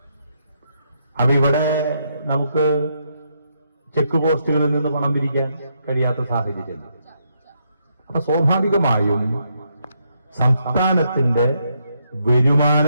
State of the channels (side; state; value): both; inverted; correlation -0.77